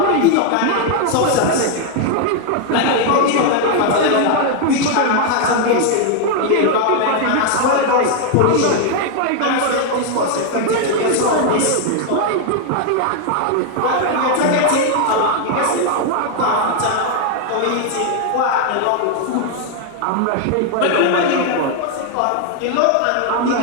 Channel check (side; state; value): both; different; correlation 0.00